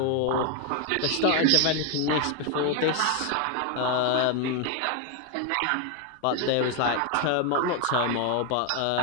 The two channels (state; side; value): different; both; correlation 0.01